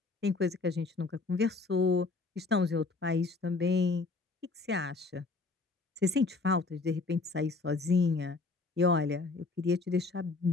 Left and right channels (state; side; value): quieter; right; 3.8 dB